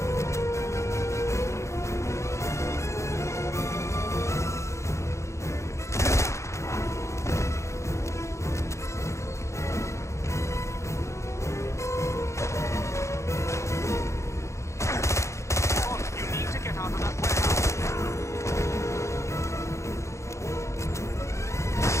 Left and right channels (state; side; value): late; right; 0.14 ms